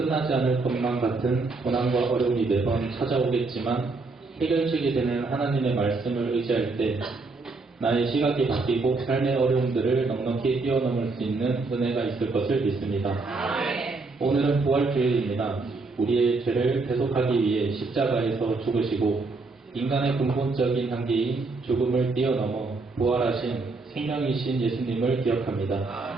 않을 것만 같은 고난과 어려움이 매번 찾아오겠지만 해결책이 되는 하나님의 말씀을 의지할 때 나의 시각이 바뀌고 삶의 어려움들을 넉넉히 뛰어넘을 수 있는 은혜가 있을 것을 믿습니다. 오늘은 부활주일입니다. 우리의 죄를 대속하기 위해 십자가에서 죽으시고 인간의 근본적인 한계인 죽음을 뛰어넘어 부활하신 생명이신 예수님을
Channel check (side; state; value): left; quieter; 3.7 dB